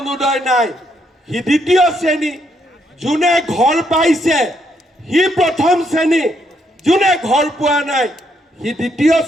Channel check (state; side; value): normal; both; correlation 0.75